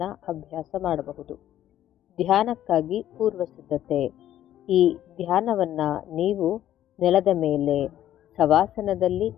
ಅಭ್ಯಾಸ ಮಾಡಬಹುದು. ಧ್ಯಾನಕ್ಕಾಗಿ ಪೂರ್ವ ಸಿದ್ಧತೆ. ಈ ಧ್ಯಾನವನ್ನು ನೀವು ನೆಲದ ಮೇಲೆ ಶವಾಸನದಲ್ಲಿ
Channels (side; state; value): right; quieter; 12.1 dB